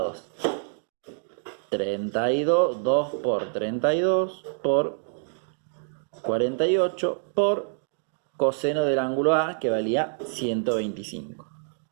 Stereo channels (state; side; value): silent; left; digital silence